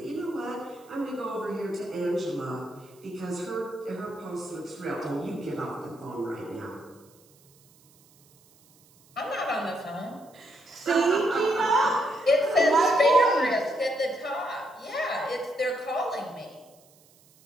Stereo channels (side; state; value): right; noise; hiss, 29 dB below the sound